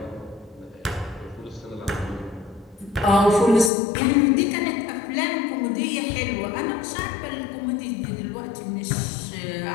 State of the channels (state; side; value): drops out; right; at 3.7 s